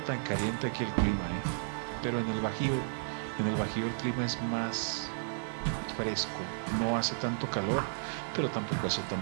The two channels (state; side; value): silent; left; digital silence